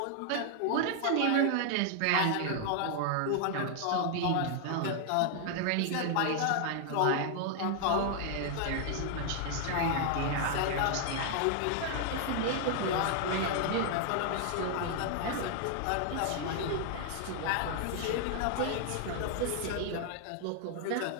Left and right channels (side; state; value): both; different; correlation 0.00